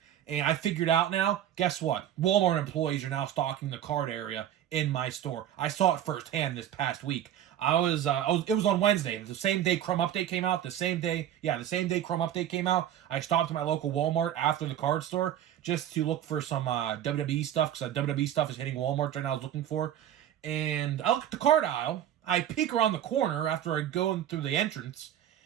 and I figured out now, guess what? Walmart employees are now stocking the card area in my store. I saw it firsthand this past week. It was on Wednesday, the same day Crumb Update came out, the same day Crumb Update came out. I stopped at my local Walmart after the card store just to look for some WWE stuff, because WWE stuff is hitting Walmart right now I was looking for. And I look at the card aisle, I peek around the corner after I go in through the entrance,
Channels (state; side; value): quieter; left; 11.0 dB